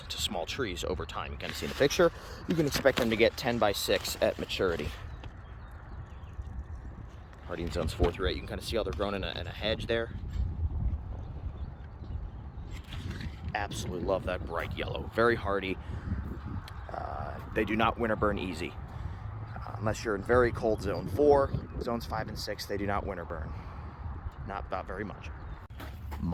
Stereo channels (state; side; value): identical; both; correlation 1.00